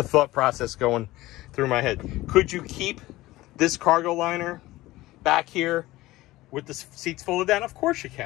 thought process going through my head. Could you keep this cargo liner back here with the seats folded down? Of course you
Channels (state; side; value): quieter; right; 17.9 dB